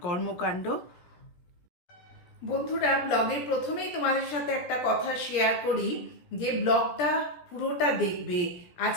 কর্মকাণ্ড। বন্ধুরা, ব্লগের প্রথমেই তোমাদের সাথে একটা কথা শেয়ার করি যে ব্লগটা পুরোটা দেখবে।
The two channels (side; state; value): right; late; 17 ms